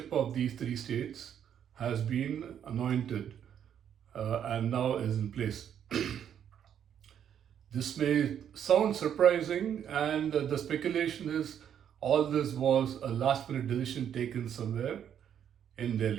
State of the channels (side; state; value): left; quieter; 9.1 dB